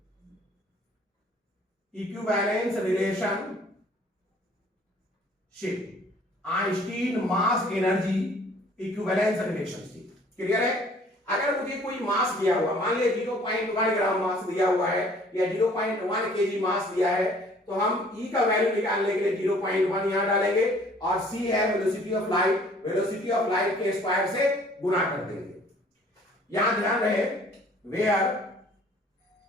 equivalence relationship, Einstein mass energy equivalence relationship. Clear है? अगर मुझे कोई मास दिया हुआ, मान लिया 0.1 ग्राम मास दिया हुआ है या 0.1 केजी मास दिया है, तो हम E का वैल्यू निकालने के लिए 0.1 यहां डालेंगे और C है velocity of light, velocity of light के स्क्वायर से गुणा कर देंगे। यहां ध्यान रहे, वेयर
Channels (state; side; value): normal; both; correlation 0.55